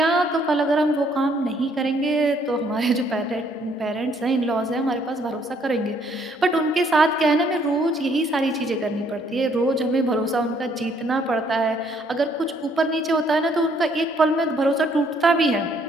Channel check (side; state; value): both; normal; correlation 0.66